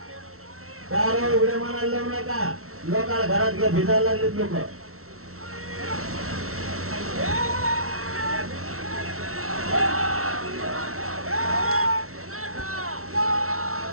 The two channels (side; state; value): left; late; 0.63 ms